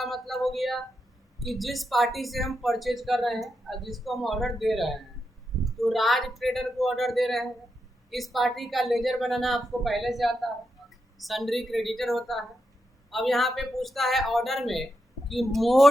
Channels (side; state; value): both; normal; correlation 0.85